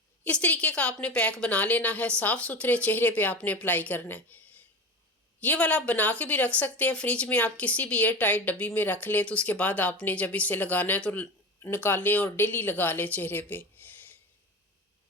इस तरीके का आपने पैक बना लेना है, साफ़ सुथरे चेहरे पे आपने अप्लाई करना है। ये वाला आप बना के भी रख सकते हैं फ्रिज में, आप किसी भी एयर टाइट डब्बी में रख लें तो उसके बाद आपने जब इसे लगाना है तो निकालें और डेली लगा लें चेहरे पे।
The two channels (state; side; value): normal; both; correlation 0.27